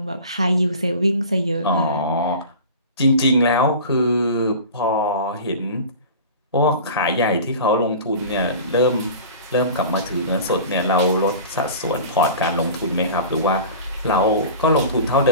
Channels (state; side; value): inverted; both; correlation -0.37